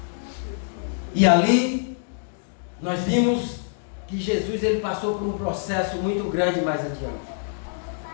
E ali nós vimos que Jesus ele passou por um processo muito grande mais adiante.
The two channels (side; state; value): right; silent; digital silence